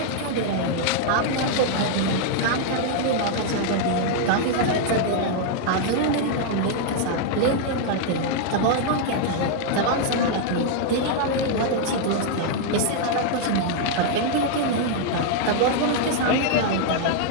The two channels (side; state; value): both; different; correlation 0.00